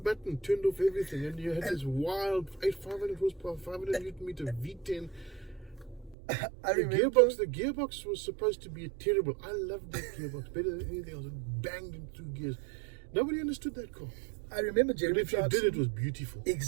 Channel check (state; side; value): drops out; left; at 6.2 s